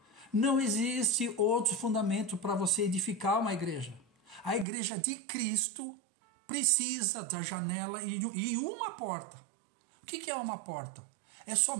Não existe outro fundamento para você edificar uma igreja. A igreja de Cristo precisa da janela e uma porta. O que é uma porta? É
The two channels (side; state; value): left; drops out; at 4.7 s